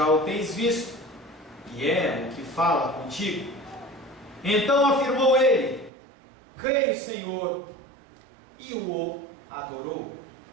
o tens visto, e é o que fala contigo. Então afirmou ele: creio, Senhor, e o adorou.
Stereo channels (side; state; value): left; drops out; at 5.9 s